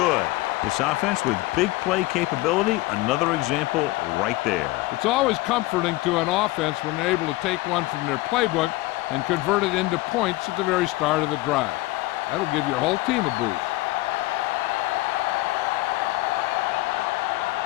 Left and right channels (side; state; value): right; quieter; 19.5 dB